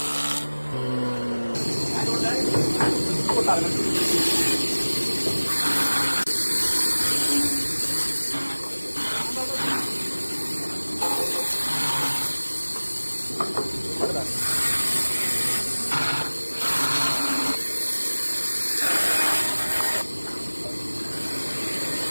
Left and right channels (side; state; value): both; inverted; correlation -1.00